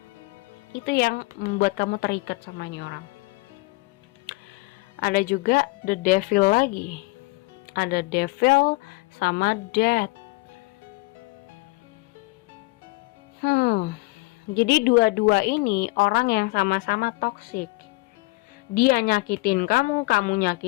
Itu yang membuat kamu terikat sama ini orang. Ada juga The Devil lagi. Ada Devil sama Death. Jadi dua-dua ini orang yang sama-sama toksik. Dia nyakitin kamu, kamu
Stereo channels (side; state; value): right; quieter; 23.8 dB